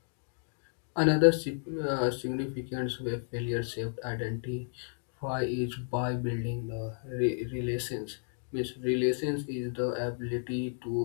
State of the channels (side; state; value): right; silent; digital silence